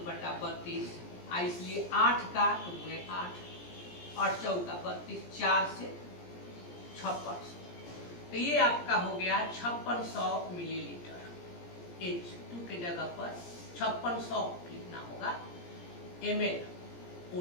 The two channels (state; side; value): late; right; 17 ms